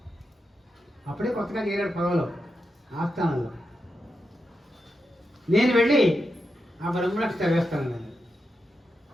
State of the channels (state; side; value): normal; both; correlation 0.87